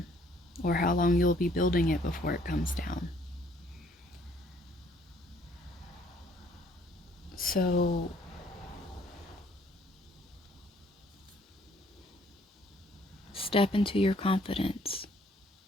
or how long you'll be building it before it comes down. So step into your confidence.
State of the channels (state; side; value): normal; both; correlation 0.62